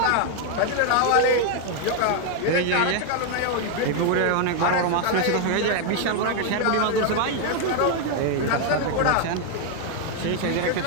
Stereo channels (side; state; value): both; different; correlation 0.00